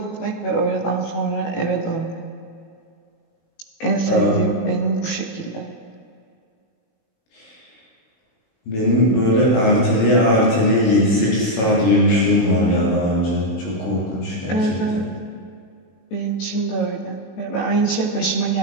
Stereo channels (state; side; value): late; right; 18 ms